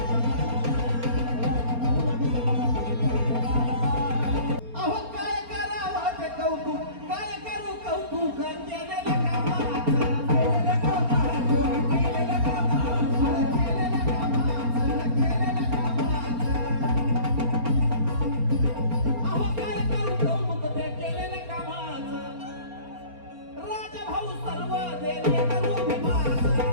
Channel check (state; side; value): late; left; 4.3 ms